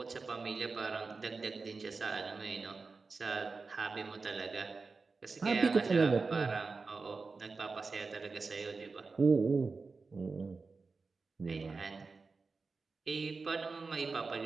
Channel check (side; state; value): left; quieter; 4.2 dB